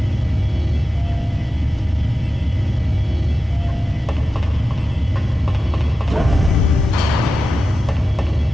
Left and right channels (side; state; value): both; normal; correlation 0.93